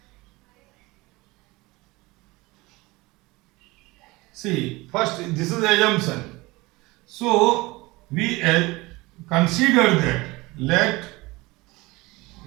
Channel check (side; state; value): left; quieter; 22.1 dB